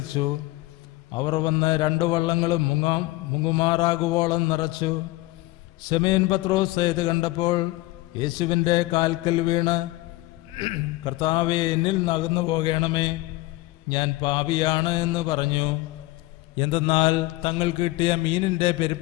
അവർ വന്ന് 2 വള്ളങ്ങളും മുങ്ങുമാറാകുവോളം നിറച്ചു. ശമയോൻ പത്രോസ് ഇത് കണ്ടപ്പോൾ യേശുവിൻ്റെ കാൽക്കൽ വീണ്, കർത്താവേ, എന്നിൽ നിന്ന് അകന്നു പോകണമേ, ഞാൻ പാപിയാണ് എന്ന് പറഞ്ഞു. എന്തെന്നാൽ തങ്ങൾക്ക് കിട്ടിയ മീനിൻ്റെ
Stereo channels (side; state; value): right; quieter; 19.5 dB